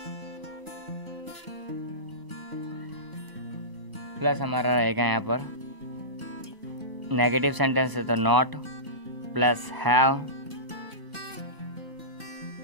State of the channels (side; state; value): left; late; 1.0 ms